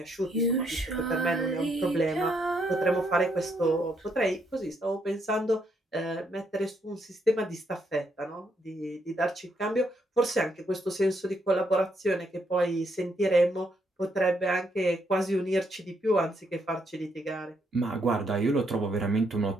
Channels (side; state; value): both; normal; correlation 0.75